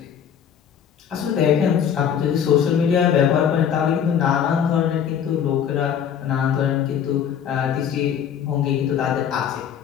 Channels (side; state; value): right; quieter; 8.4 dB